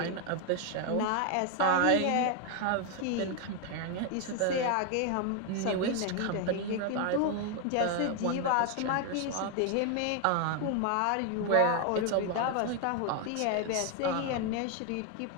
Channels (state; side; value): different; both; correlation 0.00